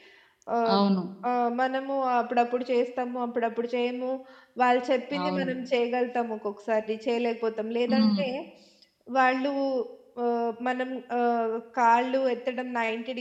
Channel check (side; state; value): both; identical; correlation 1.00